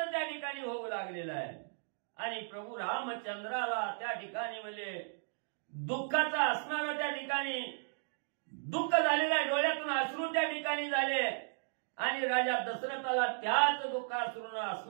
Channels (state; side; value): silent; left; digital silence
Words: त्या ठिकाणी होऊ लागलेला आहे. आणि प्रभू रामचंद्राला त्या ठिकाणी म्हणजे दुःखाचा असणारा त्या ठिकाणी दुःख झालेलं आहे. डोळ्यातून अश्रू त्या ठिकाणी झाले. आणि राजा दशरथाला त्याच दुःखाश्रूनं